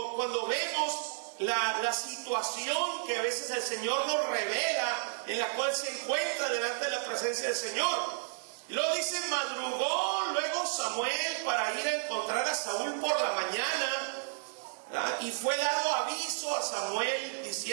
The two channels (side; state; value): left; silent; digital silence